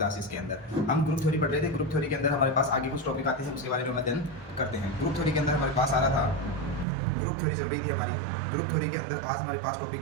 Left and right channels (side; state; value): left; drops out; at 6.9 s